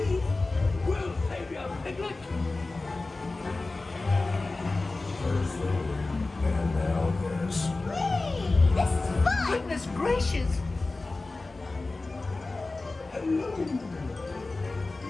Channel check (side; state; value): right; quieter; 3.3 dB